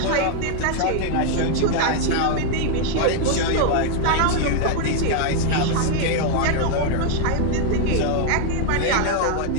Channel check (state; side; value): different; both; correlation 0.00